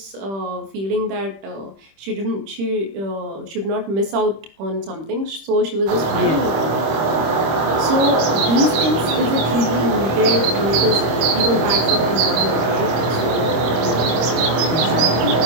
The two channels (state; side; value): late; left; 25 ms